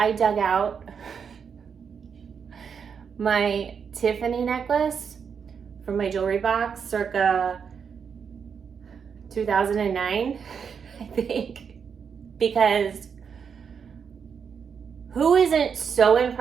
dug out my Tiffany necklace from my jewelry box circa 2009, I think. Because who isn't so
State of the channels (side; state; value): left; quieter; 6.6 dB